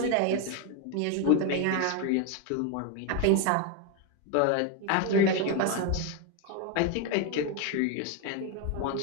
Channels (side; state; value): both; different; correlation 0.01